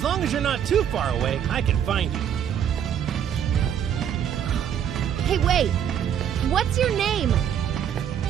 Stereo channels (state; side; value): quieter; left; 9.1 dB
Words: long as you're not too far away, I can find you. Hey, wait! What's your name?